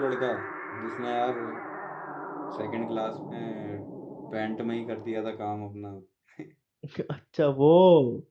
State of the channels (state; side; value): identical; both; correlation 1.00